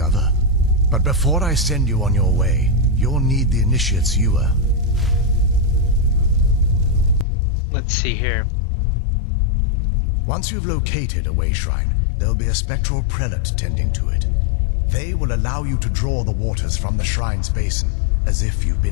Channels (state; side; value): drops out; right; at 7.2 s